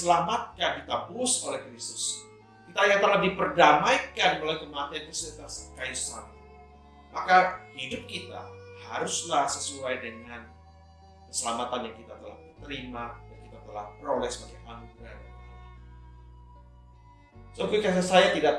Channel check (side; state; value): both; identical; correlation 1.00